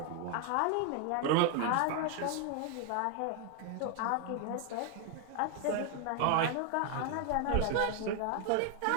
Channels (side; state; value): both; different; correlation 0.01